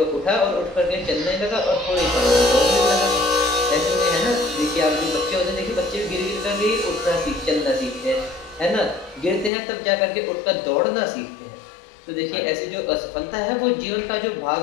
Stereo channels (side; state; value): right; drops out; at 9.5 s